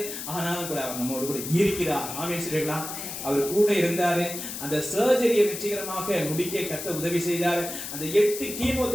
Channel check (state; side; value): noise; left; hiss, 7 dB below the sound